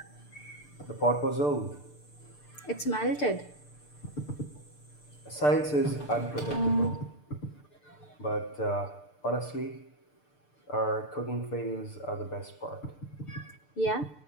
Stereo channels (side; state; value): right; late; 6.8 ms